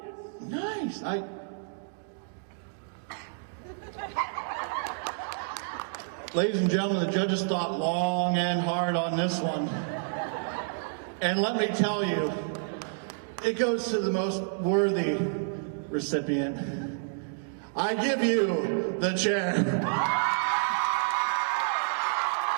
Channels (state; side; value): silent; left; digital silence